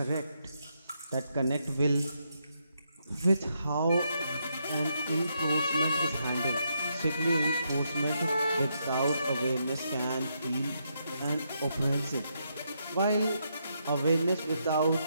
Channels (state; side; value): inverted; both; correlation -0.79